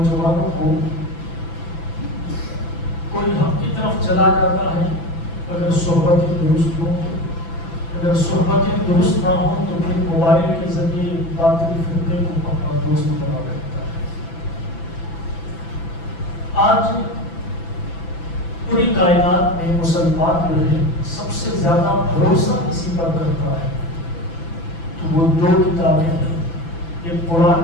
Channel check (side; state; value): right; late; 6.0 ms